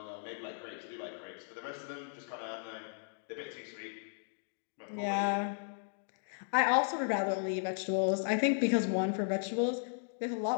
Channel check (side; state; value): right; silent; digital silence